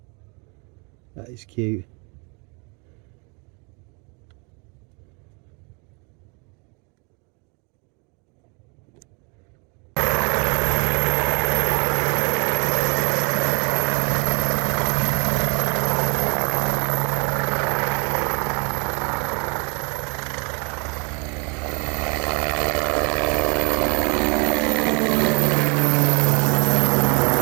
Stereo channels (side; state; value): left; quieter; 33.0 dB